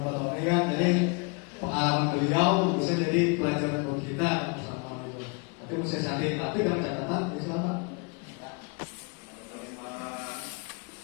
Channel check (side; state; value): right; quieter; 32.1 dB